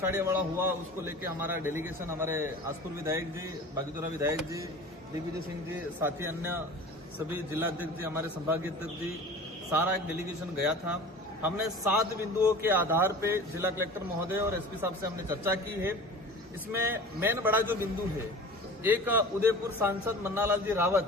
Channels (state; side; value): normal; both; correlation 0.39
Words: हुआ उसको लेके हमारा डेलीगेशन हमारे आसपुर विधायक जी, बागीदोरा विधायक जी, दिग्विजय सिंह जी, साथी अन्य सभी जिलाध्यक्ष जी, हमारे संभागीय अध्यक्ष जी, सारा एक डेलीगेशन गया था। हमने 7 बिंदुओं के आधार पे जिला कलेक्टर महोदय और एसपी साहब से हमने चर्चा की है। इसमें मेन बड़ा जो बिंदु है, एक उदयपुर सांसद मन्नालाल जी